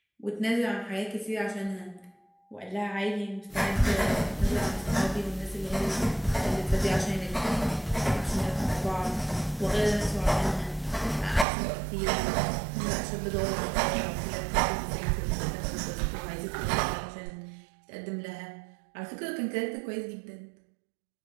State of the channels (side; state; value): left; drops out; at 11.5 s